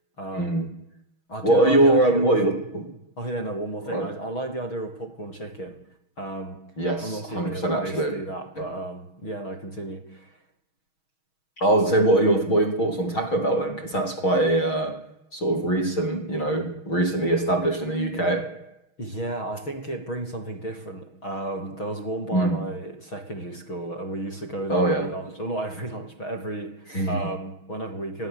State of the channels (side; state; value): right; late; 6.3 ms